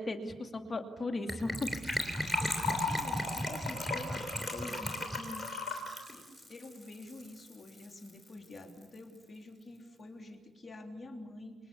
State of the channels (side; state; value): both; normal; correlation 0.79